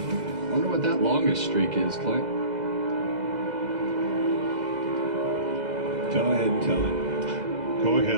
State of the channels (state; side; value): late; left; 2.0 ms